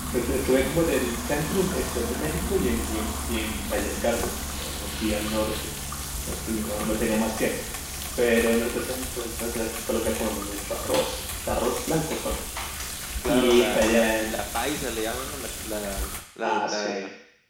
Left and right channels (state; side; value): identical; both; correlation 1.00